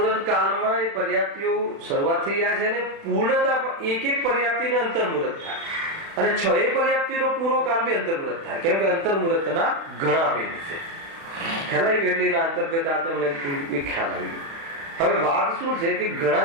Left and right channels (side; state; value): left; late; 36 ms